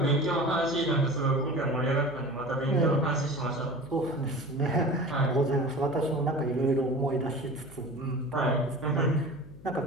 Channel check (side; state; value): left; noise; hum, 20 dB below the sound